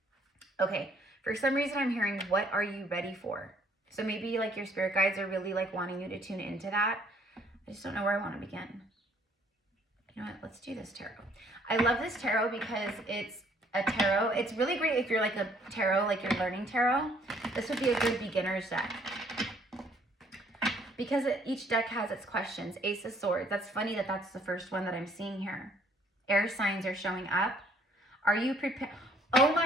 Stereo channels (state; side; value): normal; both; correlation 0.63